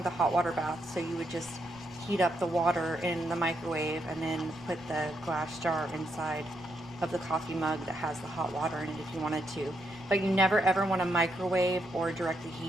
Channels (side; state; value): left; noise; rumble, 24 dB below the sound